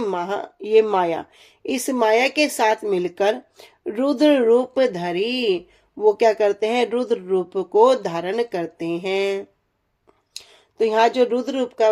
ये माया, इस माया के साथ मिलकर रुद्र रूप धरी, वो क्या करते हैं, रुद्र रूप को धारण करते हैं। तो यहाँ जो रुद्र रूप का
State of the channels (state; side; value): identical; both; correlation 1.00